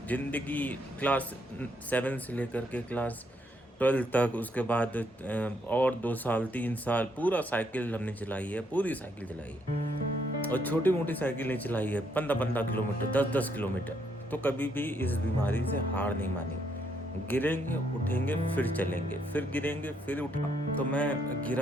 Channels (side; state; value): both; normal; correlation 0.73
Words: ज़िंदगी क्लास 7 से लेकर के क्लास 12 तक, उसके बाद और 2 साल 3 साल पूरा साइकिल हमने चलाई है, पूरी साइकिल चलाई है। और छोटी मोटी साइकिल नहीं चलाई है, 15-15 किलोमीटर, 10-10 किलोमीटर। तो कभी भी इस बीमारी से हार नहीं मानी। गिरेंगे, उठेंगे, फिर चलेंगे, फिर गिरेंगे, फिर उठा। तो मैं